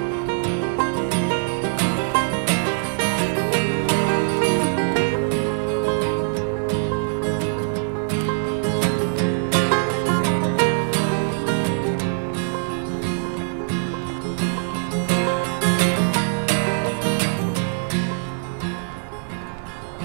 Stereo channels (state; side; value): silent; left; digital silence